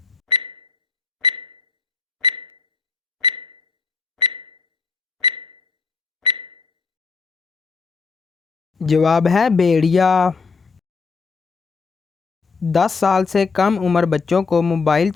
जवाब है भेड़िया। 10 साल से कम उम्र बच्चों को मोबाइल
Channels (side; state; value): right; quieter; 4.8 dB